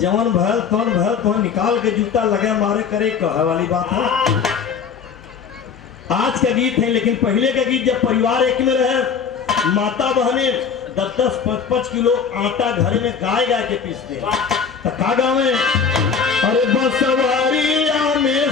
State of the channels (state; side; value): quieter; right; 6.3 dB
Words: जवन भल तौन निकाल के जूता लगे मारे करे कहे वाली बात है। आज का गीत है, लेकिन पहले का गीत जब परिवार एक में रहे, माता बहने 10-5 किलो आटा घर में गाय के पीसते तो का गावे, अरे बसवारिया में